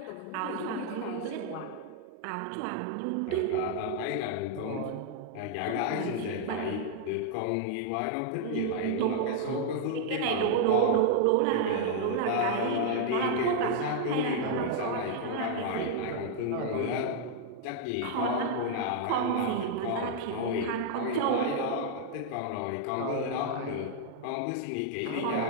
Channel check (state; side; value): different; both; correlation -0.01